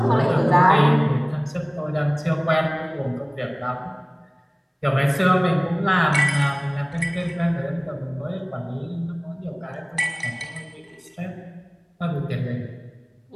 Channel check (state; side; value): identical; both; correlation 1.00